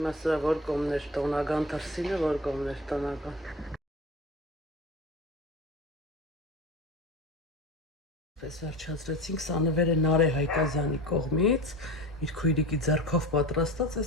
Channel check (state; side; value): normal; both; correlation 0.33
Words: որ կողմներ տոնական դրսինը, որ կողմներ տնական։ Պես վերջացրեցինք, սա նվերը Նարե Հայկազյանի կողմից, իր քույրիկի ձեռքով պատրաստած,